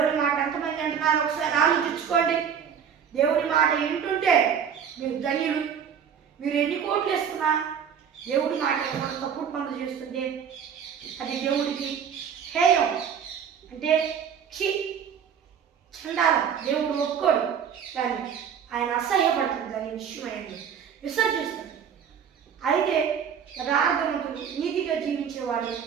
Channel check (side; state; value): left; quieter; 7.8 dB